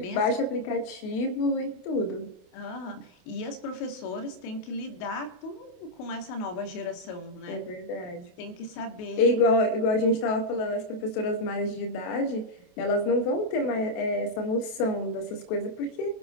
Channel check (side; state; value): right; late; 28 ms